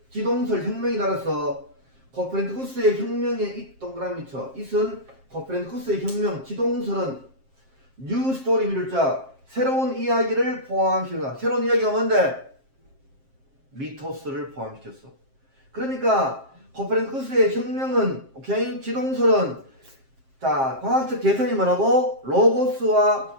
지동설 혁명이 따라서 코페르니쿠스의 혁명에 이 동그라미 쳐. 이선 코페르니쿠스의 혁명, 지동설은 뉴 스토리 미룰자, 새로운 이야기를 포함시켰다. 새로운 이야기가 뭔데? 미토스를 포함시켰어. 그러니까 코페르니쿠스의 혁명은, 오케이? 지동설은, 자, 과학적 계산이 뭐라고? 로고스와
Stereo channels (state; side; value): late; left; 7.5 ms